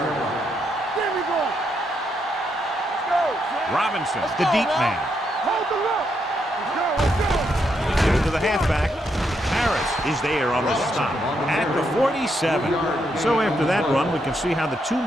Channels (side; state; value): both; normal; correlation 0.79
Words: line. There we go. Let's go. Robinson, the deep man. Hold the look. Let's go. Give it to the halfback. Harris is there on the stop at the 47. So after that run, we can see how the two